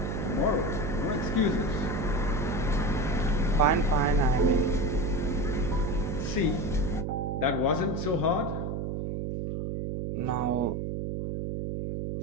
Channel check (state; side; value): noise; right; hum, 3 dB below the sound